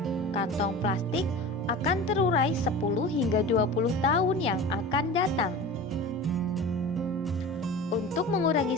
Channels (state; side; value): normal; both; correlation 0.34